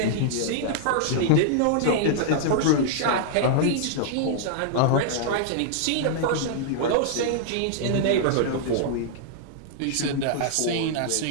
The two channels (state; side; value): different; both; correlation -0.01